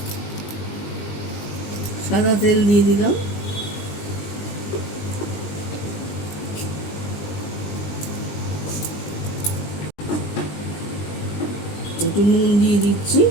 তেল দিয়ে দিলাম। একটু নুন দিয়ে দিচ্ছি।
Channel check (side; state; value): right; late; 20 ms